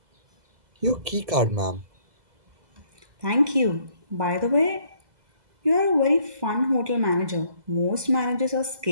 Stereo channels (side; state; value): left; late; 2.0 ms